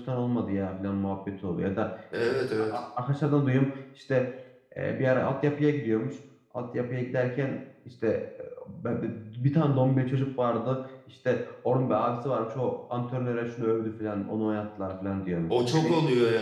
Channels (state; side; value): identical; both; correlation 1.00